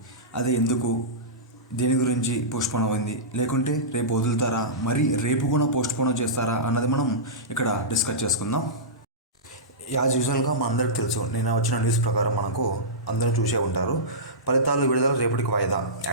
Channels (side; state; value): both; normal; correlation -0.17